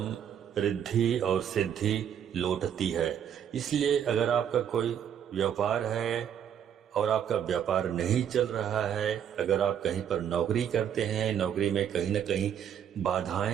रिद्धि और सिद्धि लौटती है। इसलिए अगर आपका कोई व्यापार है और आपका व्यापार नहीं चल रहा है, अगर आप कहीं पर नौकरी करते हैं, नौकरी में कहीं न कहीं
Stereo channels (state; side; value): quieter; left; 9.0 dB